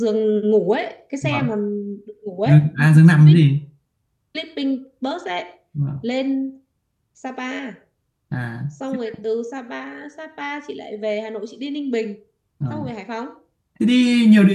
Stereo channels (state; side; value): identical; both; correlation 1.00